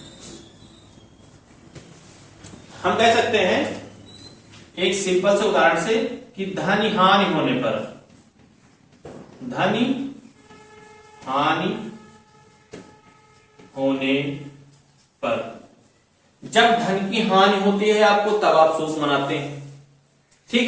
हम कह सकते हैं एक सिंपल से उदाहरण से कि धन हानि होने पर, धन हानि होने पर, जब धन की हानि होती है आपको तब आप शोक मनाते हैं, ठीक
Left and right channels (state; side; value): identical; both; correlation 1.00